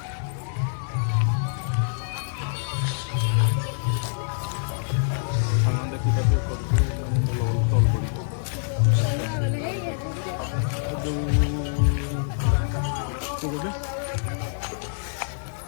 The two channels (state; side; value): silent; right; digital silence